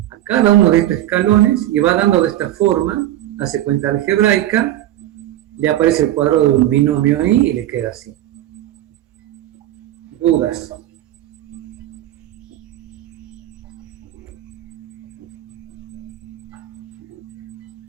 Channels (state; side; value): quieter; left; 13.4 dB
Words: a cada uno de estos escalones y va dando de esta forma, hace cuenta algebraica, le aparece el cuadrado de un binomio ahí y le queda así. ¿Dudas?